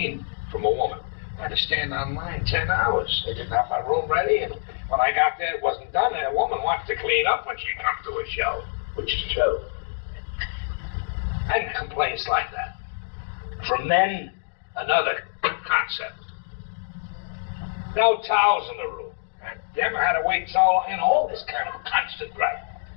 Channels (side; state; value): right; silent; digital silence